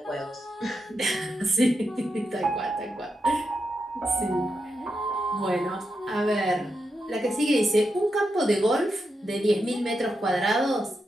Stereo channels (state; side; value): normal; both; correlation 0.86